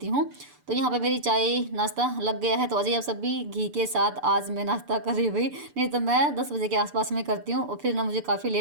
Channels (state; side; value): late; left; 6.9 ms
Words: हूँ। तो यहाँ पर मेरी चाय नाश्ता लग गया है, तो अजय आप सब भी घी के साथ आज मैं नाश्ता कर रही हुई, नहीं तो मैं 10 बजे के आसपास में करती हूँ, और फिर ना मुझे काफ़ी